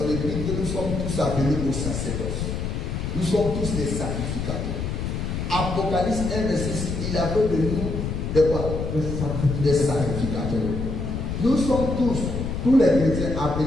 épître que nous sommes tous appelés au sacerdoce. Nous sommes tous des sacrificateurs. Apocalypse 1, verset 6, il appelle de nous des quoi? Des sacrificateurs. Nous sommes tous les chrétiens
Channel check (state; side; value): noise; left; rumble, 3 dB below the sound